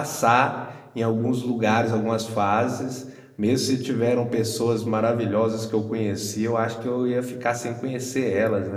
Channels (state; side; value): identical; both; correlation 1.00